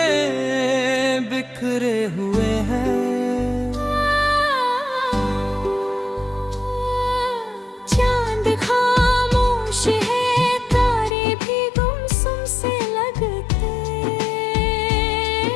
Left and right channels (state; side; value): drops out; right; at 11.2 s